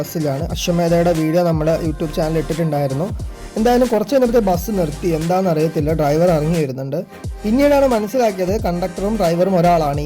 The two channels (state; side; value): identical; both; correlation 1.00